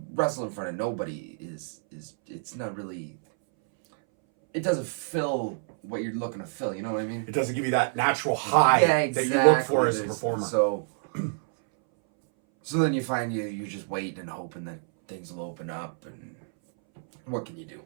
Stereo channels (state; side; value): silent; left; 60 dB below the other